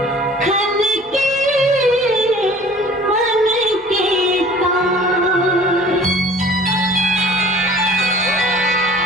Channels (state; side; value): normal; both; correlation 0.48